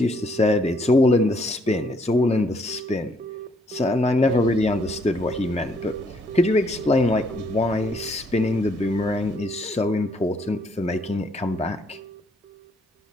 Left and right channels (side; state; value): both; normal; correlation 0.69